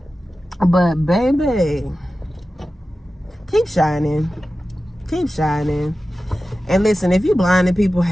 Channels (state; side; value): normal; both; correlation 0.94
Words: But baby, keep shining. Keep shining. And listen, if you blinded people,